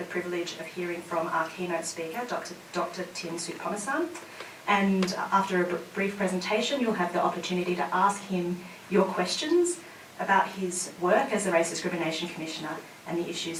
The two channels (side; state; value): both; identical; correlation 1.00